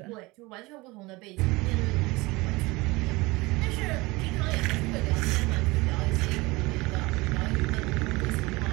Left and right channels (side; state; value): left; quieter; 22.7 dB